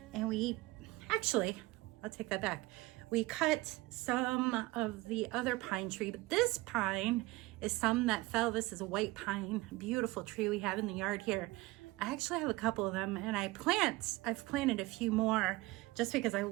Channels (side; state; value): left; quieter; 20.8 dB